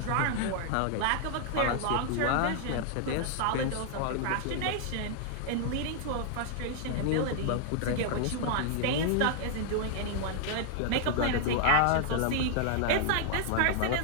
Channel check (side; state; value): both; different; correlation 0.00